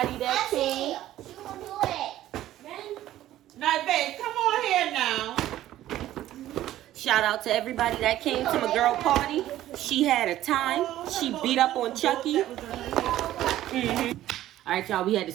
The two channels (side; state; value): left; quieter; 13.7 dB